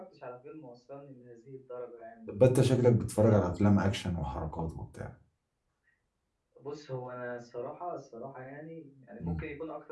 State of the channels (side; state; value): both; identical; correlation 1.00